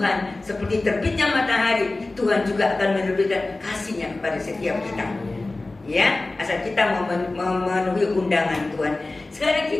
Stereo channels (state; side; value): quieter; right; 3.1 dB